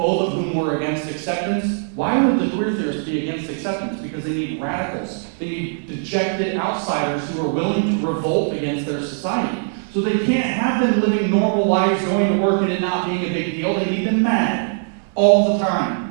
of whom were against acceptance. Why would the queer theorists be against acceptance? Because they need radicals. They need dejected outsiders who are willing to revolt against their society. So they can't have them living normal lives, going to work and it not being a big deal. They need them mad all the time.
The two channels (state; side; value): silent; left; 61 dB below the other